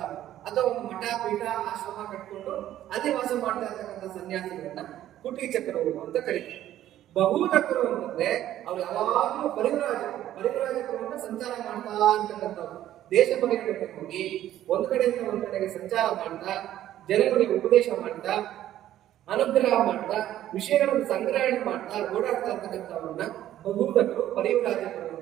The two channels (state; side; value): quieter; left; 12.6 dB